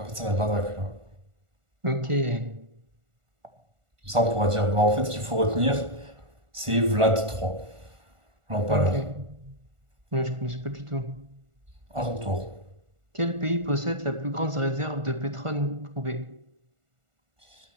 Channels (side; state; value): left; late; 1.4 ms